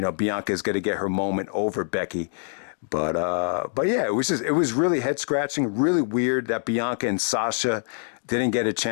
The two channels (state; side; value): silent; right; digital silence